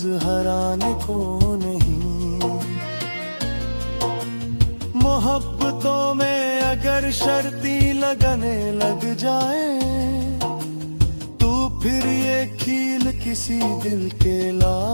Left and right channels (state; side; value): inverted; both; correlation -1.00